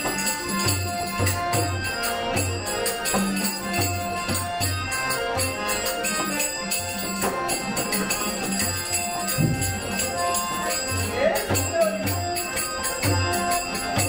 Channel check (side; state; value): both; identical; correlation 1.00